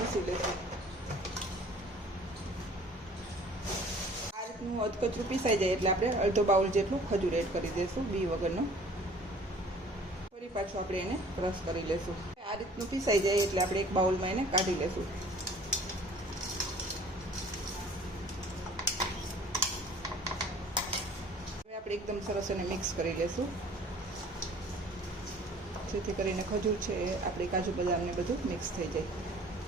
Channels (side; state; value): both; normal; correlation 0.51